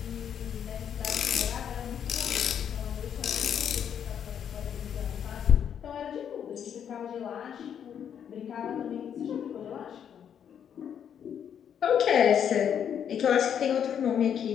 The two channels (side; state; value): right; quieter; 8.6 dB